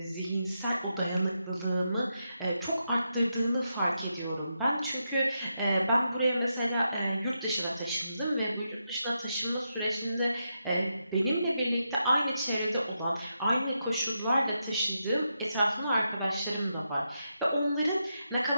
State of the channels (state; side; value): inverted; both; correlation -0.84